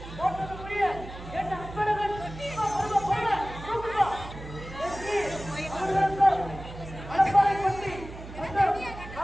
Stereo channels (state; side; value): noise; right; hum, 13 dB below the sound